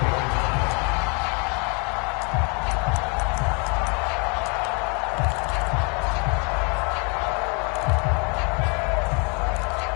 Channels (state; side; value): quieter; right; 34.0 dB